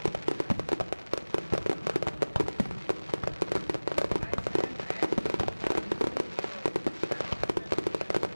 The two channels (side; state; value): both; inverted; correlation -1.00